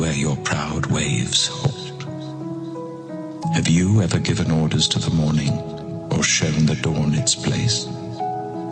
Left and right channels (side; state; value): both; identical; correlation 1.00